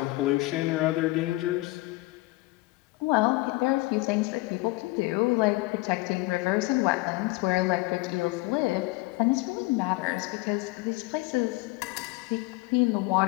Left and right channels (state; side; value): quieter; right; 21.7 dB